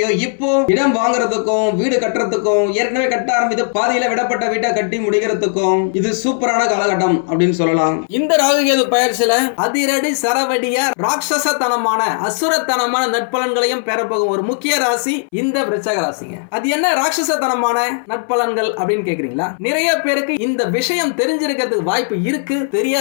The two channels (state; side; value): silent; right; 63 dB below the other